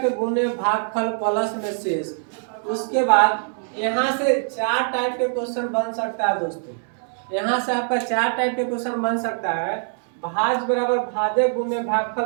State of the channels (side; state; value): left; silent; 63 dB below the other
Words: गुने भागफल प्लस में शेष। उसके बाद यहाँ से चार टाइप के क्वेश्चन बन सकता है दोस्तों। यहाँ से आपका चार टाइप के क्वेश्चन बन सकता है। भाज्य बराबर भाजक गुने भागफल